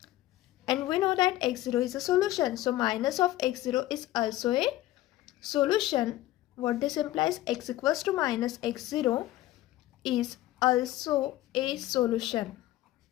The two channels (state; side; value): quieter; right; 15.5 dB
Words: And we know that x0 is a solution, so minus of x0 is also a solution. What this implies? X equals to minus x0 is also a solution